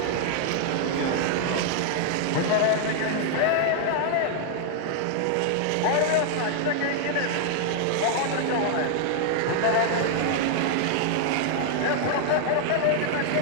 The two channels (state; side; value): different; both; correlation 0.00